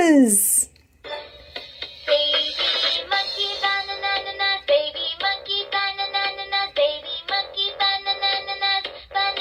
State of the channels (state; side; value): identical; both; correlation 1.00